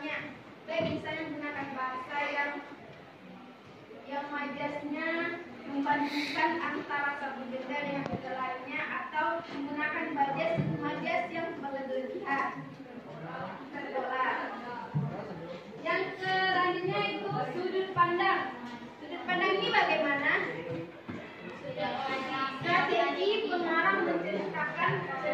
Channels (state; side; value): identical; both; correlation 1.00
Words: Baik misalnya menggunakan bahasa yang majasnya membandingkan antara satu benda dengan benda lainnya, atau menggunakan majas yang berlebihan. Yang selanjutnya itu sudut pandang. Sudut pandang ini bagaimana? Strategi pengarang menceritakan